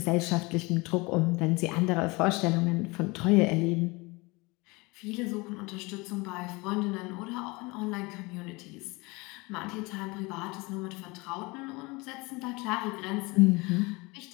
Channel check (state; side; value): quieter; right; 25.1 dB